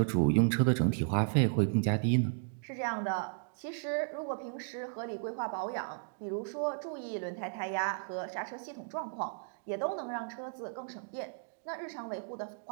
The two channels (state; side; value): silent; left; digital silence